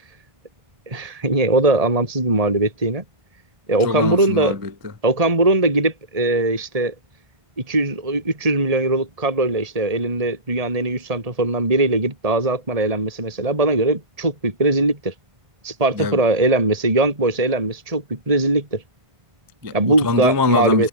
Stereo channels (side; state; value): left; late; 1.7 ms